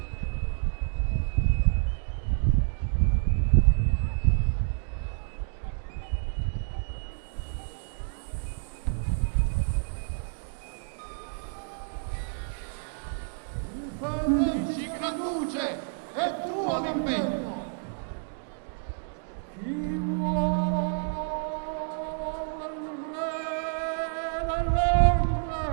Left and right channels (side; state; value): left; silent; digital silence